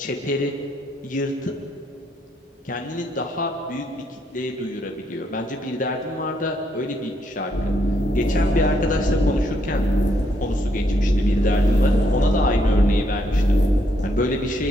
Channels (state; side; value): normal; both; correlation 0.74